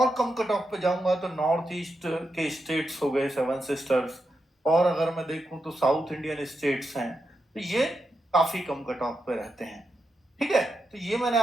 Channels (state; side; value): normal; both; correlation 0.86